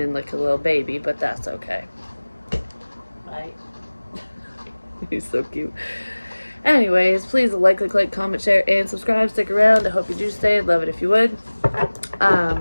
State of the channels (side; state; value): both; inverted; correlation -1.00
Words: like a little baby, but that's okay. Right? He's so cute. Anyways, please like, comment, share, and subscribe. Stick around. I hope you do stay. I'd love it if you would.